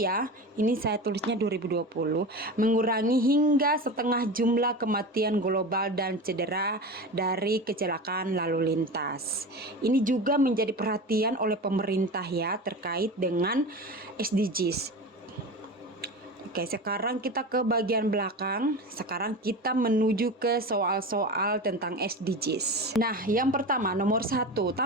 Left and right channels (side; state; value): both; normal; correlation 0.28